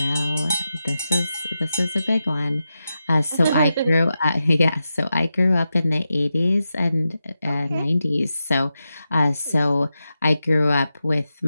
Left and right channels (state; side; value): inverted; both; correlation -0.90